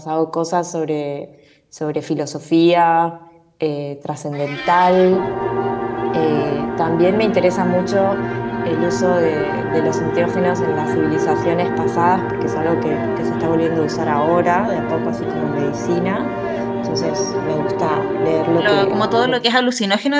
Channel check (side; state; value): both; identical; correlation 1.00